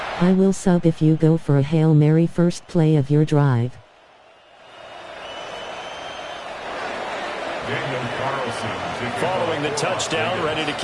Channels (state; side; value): identical; both; correlation 1.00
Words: I will sub if you go for a Hail Mary first play of your drive. Following the touchdown, ready to